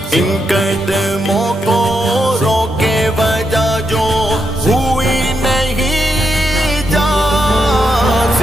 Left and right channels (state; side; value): normal; both; correlation 0.83